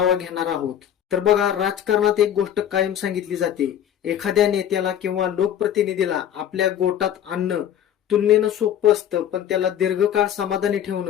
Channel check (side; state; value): right; quieter; 10.1 dB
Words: घेणार आहोत. तर बघा, राजकारणात एक गोष्ट कायम सांगितली जाते, एखाद्या नेत्याला किंवा लोकप्रतिनिधीला आपल्या गोटात आणणं तुलनेनं सोपं असतं, पण त्याला दीर्घकाळ समाधानी